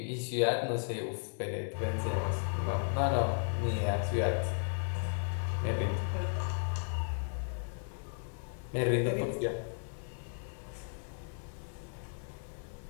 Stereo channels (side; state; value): right; silent; digital silence